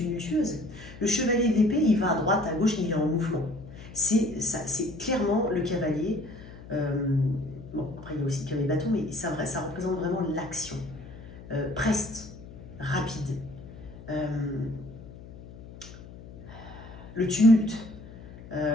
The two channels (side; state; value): left; noise; hum, 16 dB below the sound